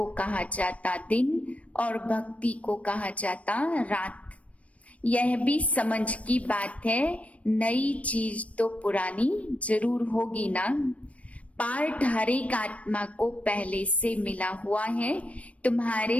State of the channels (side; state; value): right; late; 0.065 ms